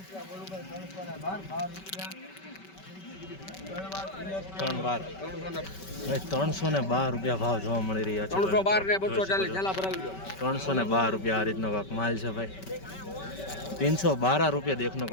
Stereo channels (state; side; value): late; right; 5.2 ms